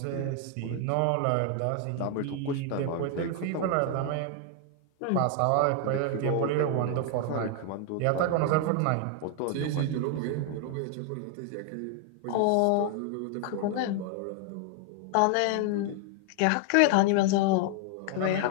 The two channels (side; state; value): both; different; correlation 0.00